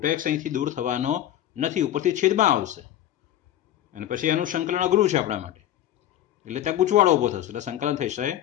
અહીંથી દૂર થવાનો નથી, ઉપરથી છેદમાં આવશે, અને પછી એનું સંકલન અઘરું છે આપણા માટે. એટલે ત્યાં ગૂંચવાડો ઉભો થશે, એટલે સંકલન થશે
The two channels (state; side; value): quieter; right; 12.1 dB